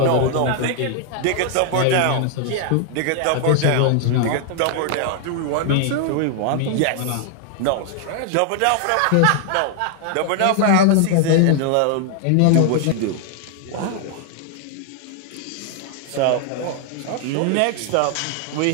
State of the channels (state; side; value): different; both; correlation 0.00